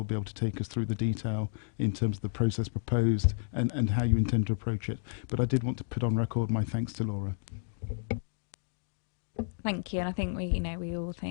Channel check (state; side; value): silent; right; digital silence